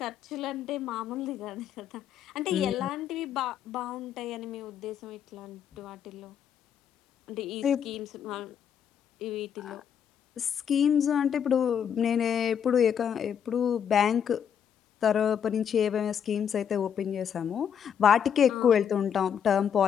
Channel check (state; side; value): quieter; right; 8.2 dB